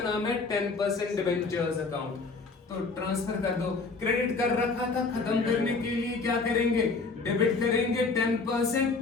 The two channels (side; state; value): right; quieter; 4.0 dB